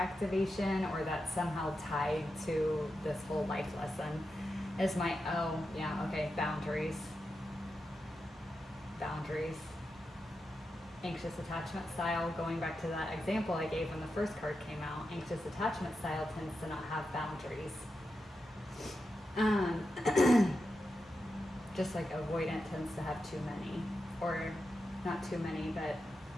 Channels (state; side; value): normal; both; correlation 0.89